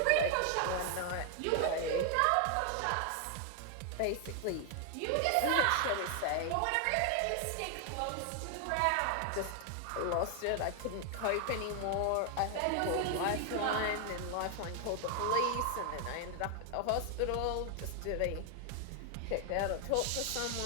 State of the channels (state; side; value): different; both; correlation 0.00